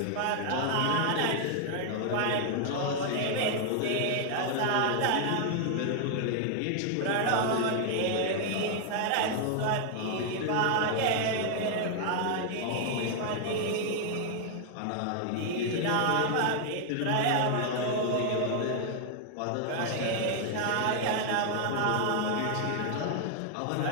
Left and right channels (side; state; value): both; different; correlation 0.00